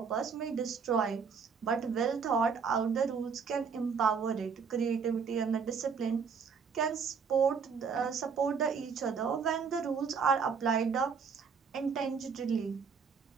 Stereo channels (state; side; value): quieter; left; 5.9 dB